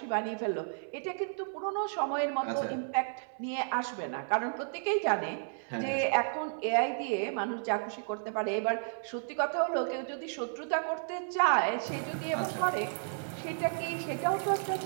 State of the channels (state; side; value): silent; left; 56 dB below the other